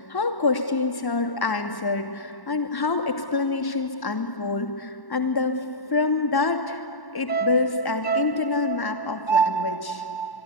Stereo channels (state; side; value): late; right; 1.1 ms